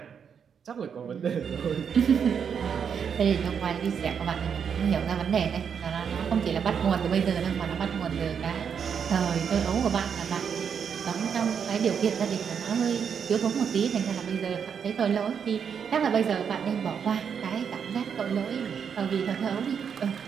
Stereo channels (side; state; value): left; quieter; 7.2 dB